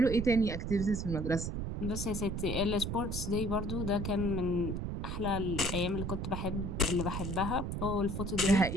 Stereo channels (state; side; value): noise; right; rumble, 3 dB below the sound